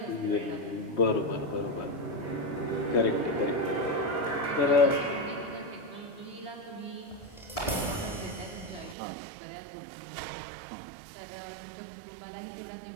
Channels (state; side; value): drops out; left; at 9.0 s